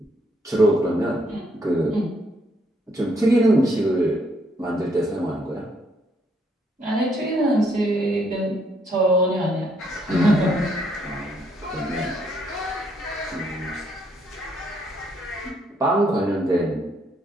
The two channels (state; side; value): normal; both; correlation 0.71